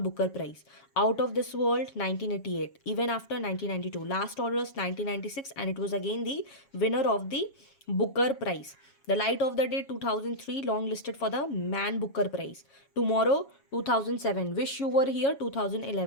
Booker Prize. Out of This World 1988, even after 1992. Last Orders 1996, and it was again the winner of the Booker Prize. The Light of the Day 2003, long listed for the Man Booker Prize. Tomorrow 2007, Wish You Were Here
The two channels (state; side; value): late; right; 7.2 ms